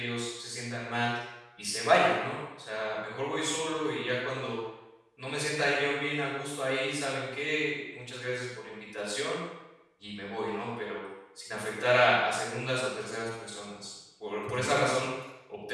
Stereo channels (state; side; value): identical; both; correlation 1.00